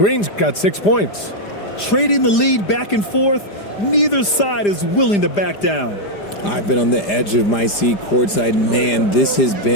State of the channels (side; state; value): right; late; 5.0 ms